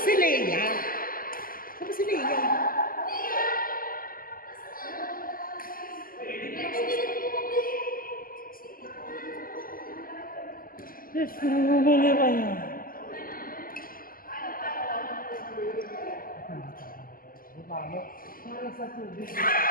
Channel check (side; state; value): right; late; 0.42 ms